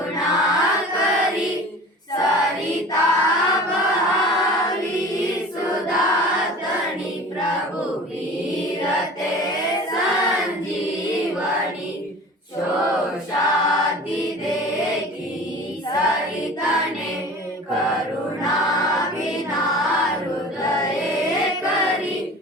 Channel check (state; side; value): normal; both; correlation 0.40